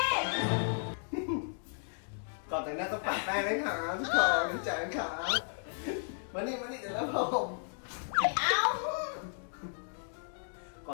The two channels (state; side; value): silent; right; digital silence